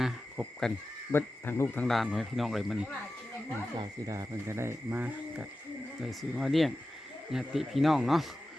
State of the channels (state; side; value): normal; both; correlation 0.94